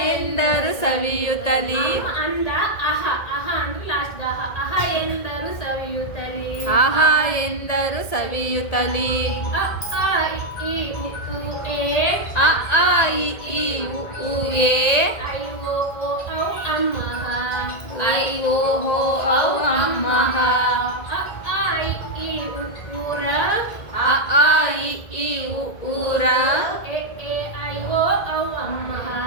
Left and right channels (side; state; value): right; late; 1.8 ms